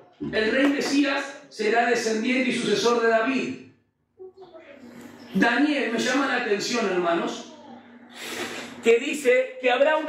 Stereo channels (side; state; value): both; identical; correlation 1.00